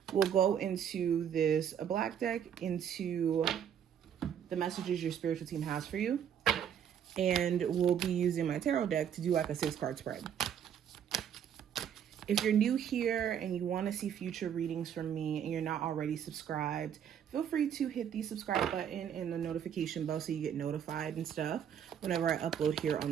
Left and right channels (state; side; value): quieter; left; 8.8 dB